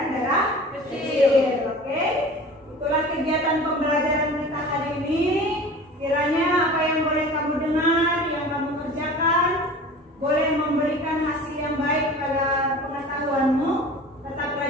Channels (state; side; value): normal; both; correlation 0.39